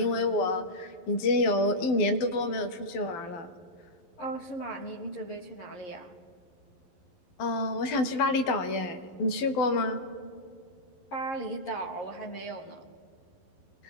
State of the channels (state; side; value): late; right; 12 ms